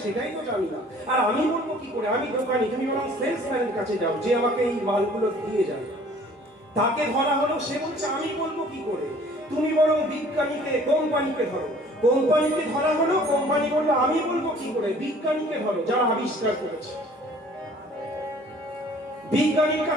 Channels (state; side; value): normal; both; correlation 0.53